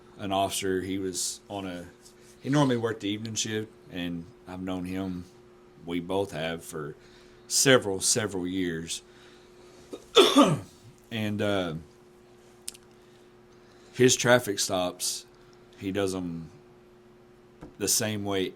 officer. He was he normally worked the evening shift, and I've known him. We both have for several years, and his traffic stops, he does them the same way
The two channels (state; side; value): identical; both; correlation 1.00